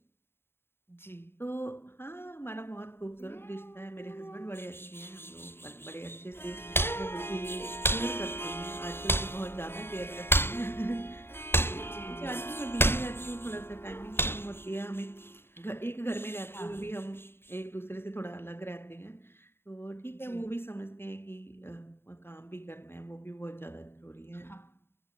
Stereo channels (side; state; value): right; late; 0.11 ms